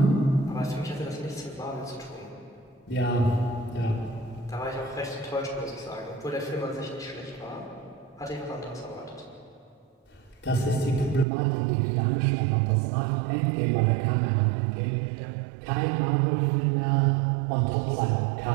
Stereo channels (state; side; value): drops out; left; at 11.2 s